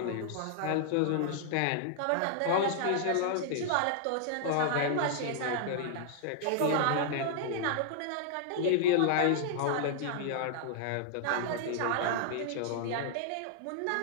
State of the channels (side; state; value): both; different; correlation -0.01